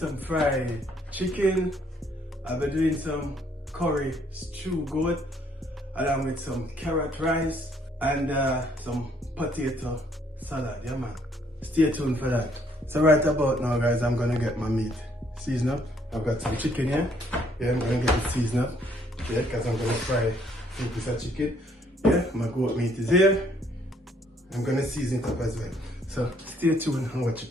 fried chicken, I'll be doing some curry stew goat, along with some carrot rice and some potato salad, yeah man. Stay tuned for that. So right about now, guys, I'm gonna get my meat seasoned up. I've got some chicken here. Yeah, I'm gonna get it seasoned up. Yeah, because I'm gonna fry a piece of chicken. Yeah, my goat meat is here. I'm gonna season it up as well. So stay tuned and watch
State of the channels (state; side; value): normal; both; correlation 0.66